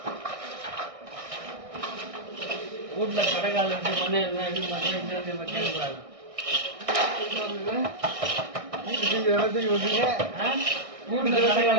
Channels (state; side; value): late; left; 1.6 ms